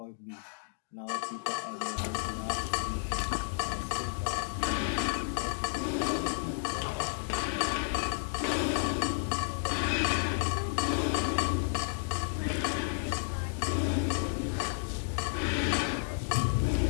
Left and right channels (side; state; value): right; silent; digital silence